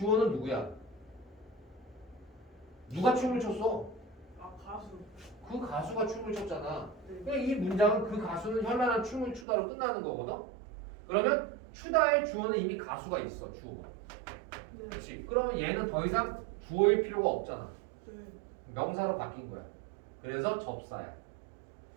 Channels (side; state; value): left; drops out; at 9.5 s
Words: 누구야? 누가 춤을 췄어? 아 가수. 그 가수가 춤을 췄잖아. 네. 그러니까 이 문장은 그 가수는 현란한 춤을 추다로 끝나는 거거든. 그러면 추다의 주어는 이미 가수가 있어. 주어가. 네. 그렇지. 그러면 얘는 더 이상 주어일 필요가 없잖아. 네. 명사로 바뀐 거야. 그래서 접사야.